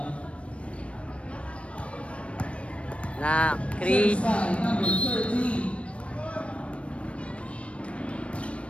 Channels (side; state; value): right; late; 0.061 ms